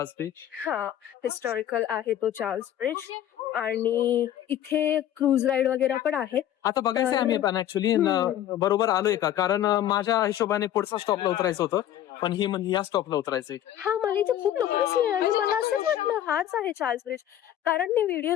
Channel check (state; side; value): quieter; right; 11.7 dB